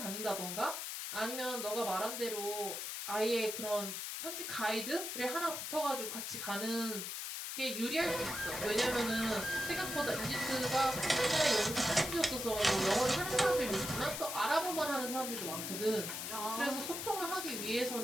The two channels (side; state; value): left; noise; hiss, 4 dB below the sound